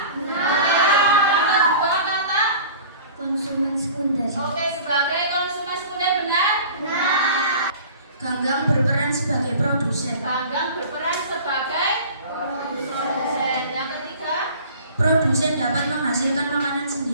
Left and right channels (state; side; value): inverted; both; correlation -0.43